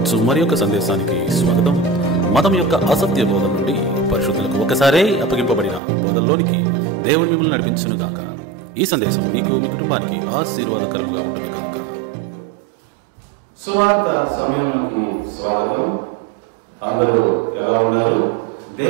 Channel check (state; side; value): drops out; left; at 5.8 s